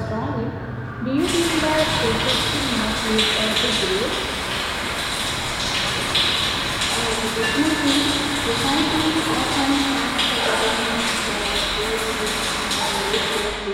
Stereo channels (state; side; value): identical; both; correlation 1.00